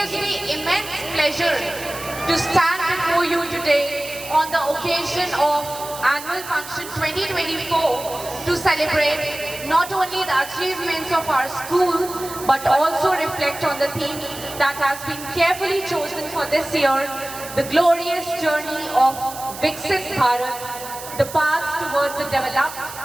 me immense pleasure to stand before you today on the occasion of Annual Function 2024 to celebrate not only the achievements of our school but also reflect on the theme that has been carefully chosen for this year, the glorious journey of Viksit Bharat, the path towards a developed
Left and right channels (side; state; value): right; noise; hiss, 12 dB below the sound